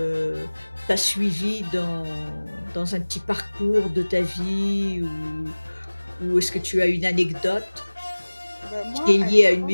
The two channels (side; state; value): both; inverted; correlation -1.00